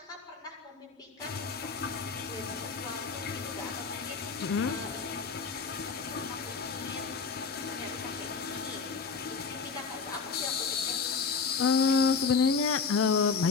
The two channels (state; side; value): quieter; right; 5.1 dB